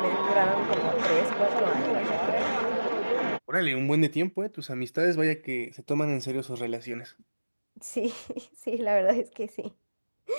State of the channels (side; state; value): both; inverted; correlation -1.00